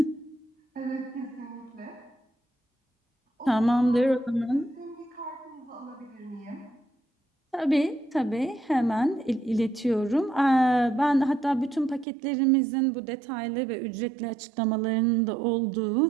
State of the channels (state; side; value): drops out; left; at 12.1 s